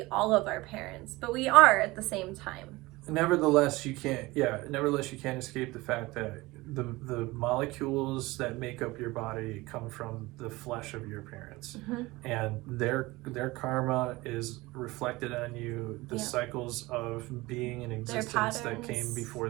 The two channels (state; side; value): quieter; left; 21.0 dB